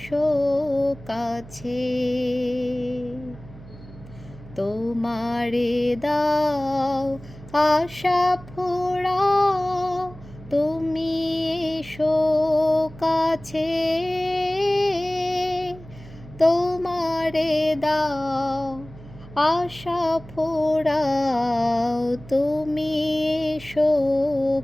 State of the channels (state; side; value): noise; right; hum, 18 dB below the sound